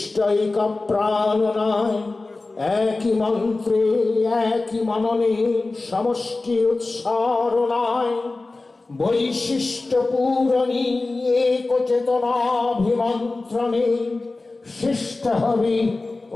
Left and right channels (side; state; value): right; quieter; 3.3 dB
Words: প্রাণনায় একই মন্ত্রে একই মননে সমষ্টি উৎসারণায় বৈশিষ্ট্য পূরণী এক চেতনাভিমন্ত্রণে শিষ্ট হবি